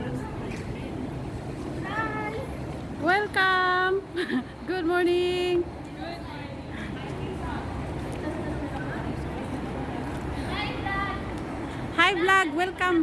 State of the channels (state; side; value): identical; both; correlation 1.00